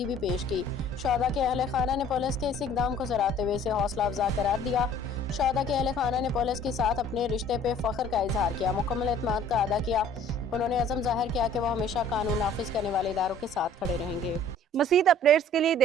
भी पेश की। शहदा के अहल खाना ने पुलिस के इस इकदाम को सराहते हुए इसे हौसला अफजा करार दिया। शहदा के अहल खाना ने पुलिस के साथ अपने रिश्ते पे फख्र का इजहार किया, मुकम्मल एतमाद का अदा किया। उन्होंने अज़म जाहिर किया कि वो हमेशा कानून नाफिज करने वाले इदारों के साथ खड़े रहेंगे। मज़ीद अपडेट्स के लिए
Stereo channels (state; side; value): normal; both; correlation 0.52